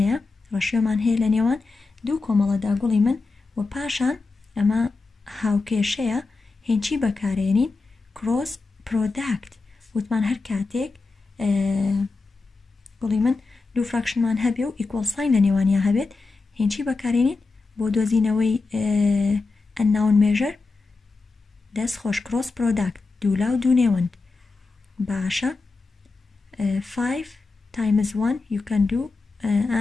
ڕەشیۆمان هەیە لە نێوان دوو کۆمەڵەدا گوڵی من و پاشان ئەمە هاوکێشەیە هێنچی بەکارێنین کڕۆس پرۆداکت وتمان هەر کاتێک گوڵی من دوو فراکشنمان هەبێ و ئیکۆڵ ساین لە نێوانیا هەبێت هێنچی بەکارێنین بۆ دۆزینەوەی ئەنناون مێژەر دەست خۆش کڕۆس پرۆداکت دوو لاو دوو نێوەند باشە 5 times 1 you can do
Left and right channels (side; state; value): right; quieter; 3.9 dB